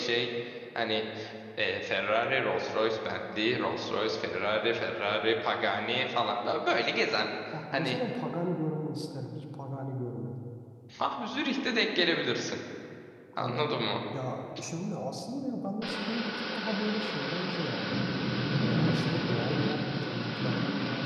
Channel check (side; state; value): both; identical; correlation 1.00